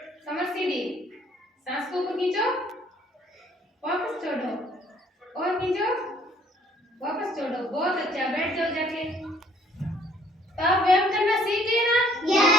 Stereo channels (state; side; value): normal; both; correlation 0.61